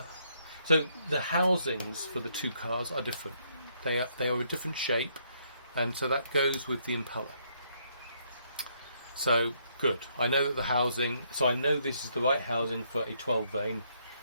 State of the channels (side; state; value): both; inverted; correlation -0.72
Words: So the housings for the two cars are different. They are a different shape, and so that goes with the impeller. So good. I know that the housing. So I know this is the right housing for a 12 vane,